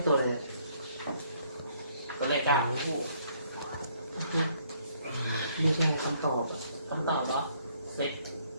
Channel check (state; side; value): inverted; both; correlation -0.66